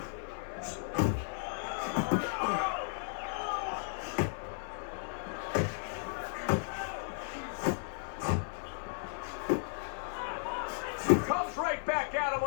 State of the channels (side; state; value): right; silent; 54 dB below the other